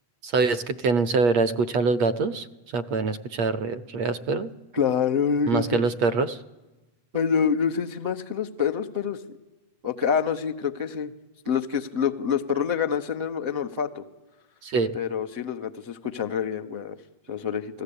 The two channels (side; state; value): left; late; 8.4 ms